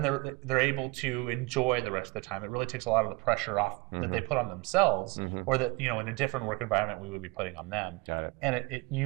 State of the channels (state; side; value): quieter; left; 25.8 dB